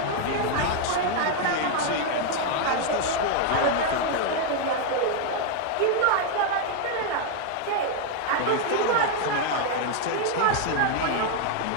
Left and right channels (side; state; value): both; different; correlation 0.00